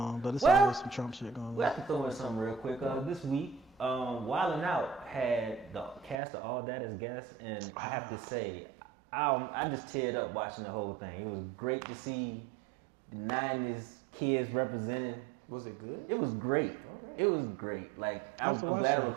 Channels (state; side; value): drops out; left; at 6.2 s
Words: but it's Well, always some Trump shit going We on. have to throw in something real quick. This week, Wild 'N Out had the cast of All That as guests, and I have to say, I just teared up watching the whole thing. It was great to see the 90s kids represented. Was it good? It was great. All right. It was great. Like I have I'm to watch glad I that.